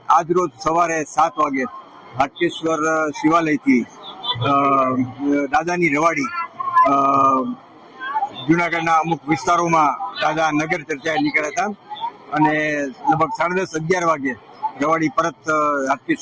આજરોજ સવારે 7 વાગે હાટકેશ્વર શિવાલયથી દાદાની રવાડી જુનાગઢના અમુક વિસ્તારોમાં દાદા નગર ચર્ચાએ નીકળ્યા હતા અને લગભગ 10:30-11 વાગે રવાડી પરત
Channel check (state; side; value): identical; both; correlation 1.00